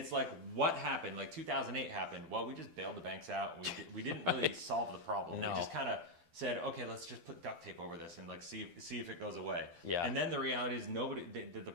like, what happened? Like 2008 happened. Well, we just bailed the banks out. We didn't really solve the problem. No. We just kind of said, okay, let's just put duct tape over this and like see if it goes away. Yeah. And then the reality is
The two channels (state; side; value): late; left; 12 ms